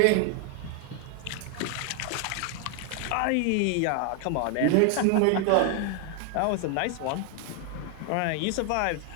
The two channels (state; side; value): different; both; correlation 0.00